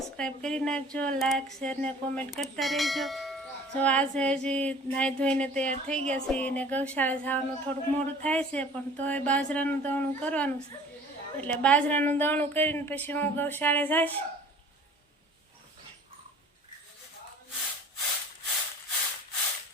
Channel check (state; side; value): normal; both; correlation 0.47